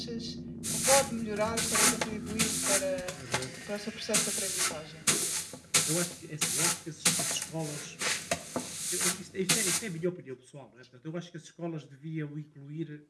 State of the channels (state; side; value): identical; both; correlation 1.00